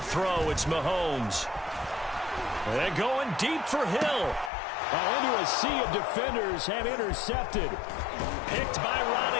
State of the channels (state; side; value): drops out; right; at 4.5 s